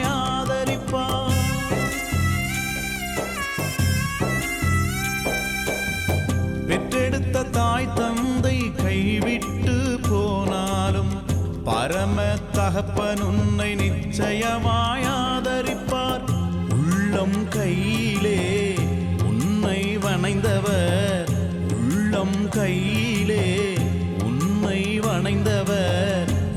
ஆதரிப்பார். பெற்றெடுத்த தாய் தந்தை கைவிட்டு போனாலும் பரம தகப்பன் உன்னை நிச்சயமாய் ஆதரிப்பார். உள்ளம் கையிலே உன்னை வணைந்தவர், உள்ளம் கையிலே உன்னை வணைந்தவர்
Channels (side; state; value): both; identical; correlation 1.00